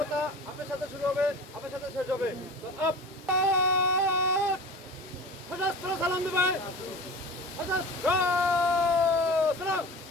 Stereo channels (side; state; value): both; normal; correlation 0.35